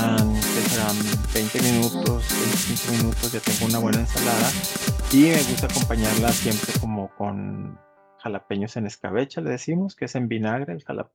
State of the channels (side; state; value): both; identical; correlation 1.00